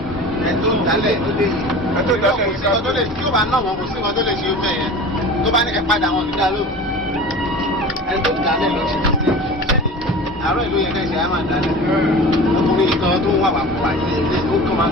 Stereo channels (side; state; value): both; normal; correlation 0.36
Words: Ẹ̀tọ́ ìdálẹ̀ ló dé yìí. Ẹ̀tọ́ ìdálẹ̀ kò sí nǹkan tó lè tí ó bá náà wọn kò sí nǹkan tó lè ṣe ó bẹ́ẹ̀ yẹn. Tó bá ní ẹ padà wọn nígbà ló. Ẹ̀tọ́ ìdálẹ̀ ló ṣe ti ṣe. Àárọ̀ ìlú yẹn kẹ́sì á máa dálẹ̀. Ọkùnrin kan tó ń wà wà fún àti ilé ó kàn máa